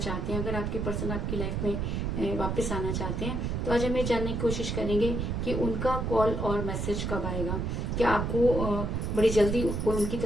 हैं, अगर आपके पर्सन आपकी लाइफ में वापस आना चाहते हैं, तो आज हम ये जानने की कोशिश करेंगे कि उनका कॉल और मैसेज कब आएगा। क्या आपको बड़ी जल्दी उनकी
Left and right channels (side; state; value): right; noise; rumble, 1 dB below the sound